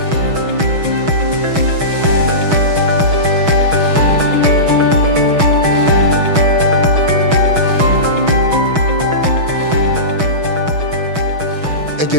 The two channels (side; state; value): left; late; 6.2 ms